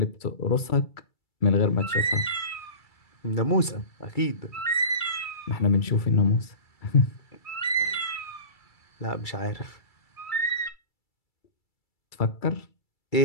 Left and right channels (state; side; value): late; right; 2.3 ms